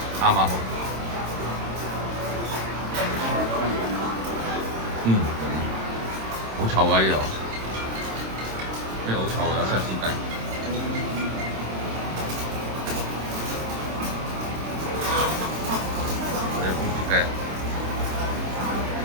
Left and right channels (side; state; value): left; late; 26 ms